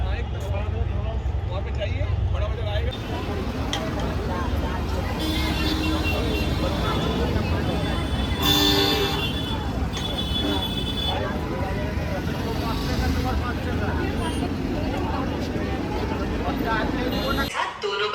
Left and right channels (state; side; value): identical; both; correlation 1.00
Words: हाँ, एक वहाँ पे चाहिए, बड़ा बाजार आएगा। दोनों